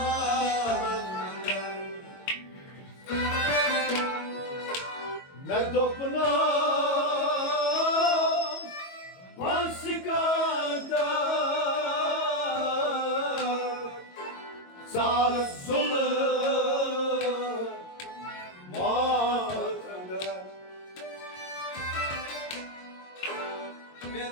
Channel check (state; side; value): late; right; 22 ms